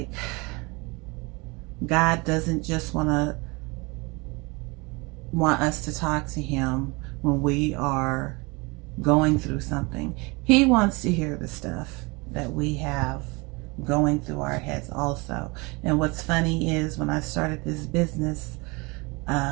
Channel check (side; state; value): left; quieter; 26.6 dB